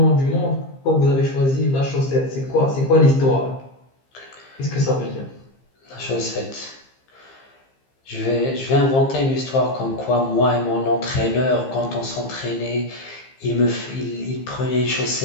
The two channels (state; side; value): late; right; 15 ms